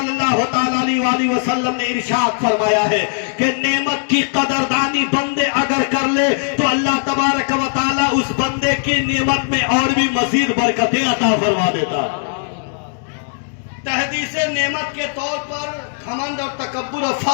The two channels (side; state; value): right; silent; digital silence